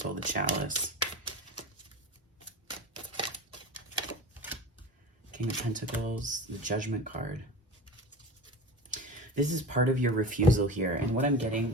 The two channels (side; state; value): both; normal; correlation 0.32